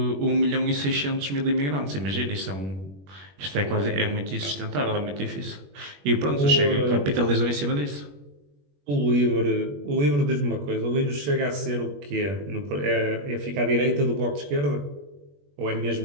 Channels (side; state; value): left; late; 21 ms